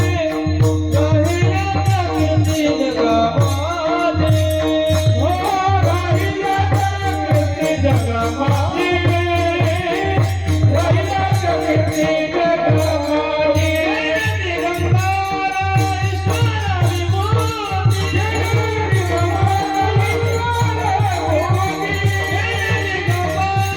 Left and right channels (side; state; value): left; noise; hum, 23 dB below the sound